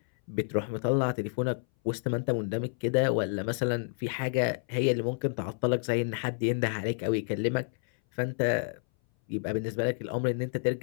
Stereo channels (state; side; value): silent; right; 58 dB below the other